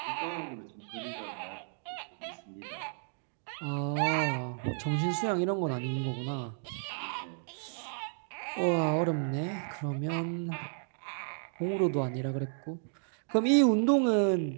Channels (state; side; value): silent; left; digital silence